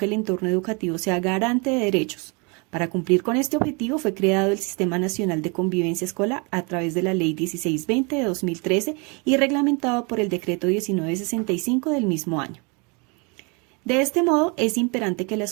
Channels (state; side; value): quieter; left; 31.5 dB